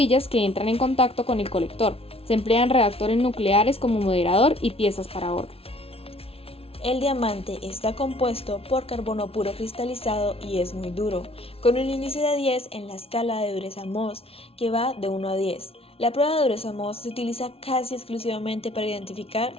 que entran en contacto con el colector. Se emplean reactores nucleares como moderador y piezas para horno. El diamante está compuesto por carbono puro cristalizado y es muy duro, con un índice de 10 en la escala de dureza Mohs, que va de 1 a 10. La prueba de dureza Mohs se utiliza casi exclusivamente para identificar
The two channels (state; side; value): late; right; 0.28 ms